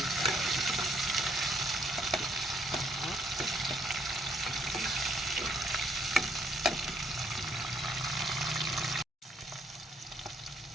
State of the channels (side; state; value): both; normal; correlation 0.69